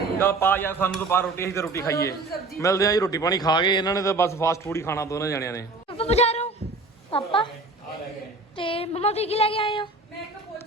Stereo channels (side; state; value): left; quieter; 3.3 dB